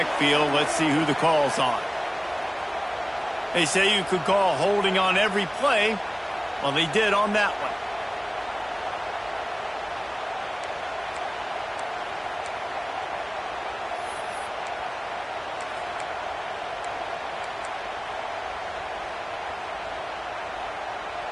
Let's see who the call's on. They say you could call holding on every play. Well, they did on that one.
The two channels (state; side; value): identical; both; correlation 1.00